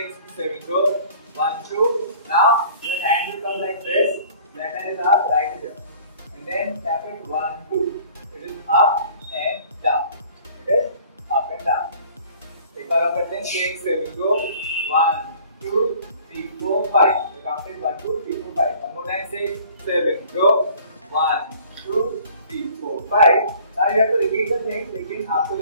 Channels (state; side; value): inverted; both; correlation -0.51